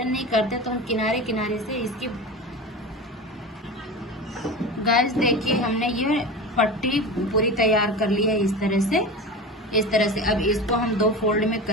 नहीं करते तो हम किनारे किनारे से इसकी गाइस देखिए हमने ये पट्टी पूरी तैयार कर ली है इस तरह से। अब इसको हम 2 फोल्ड में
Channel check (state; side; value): normal; both; correlation 0.29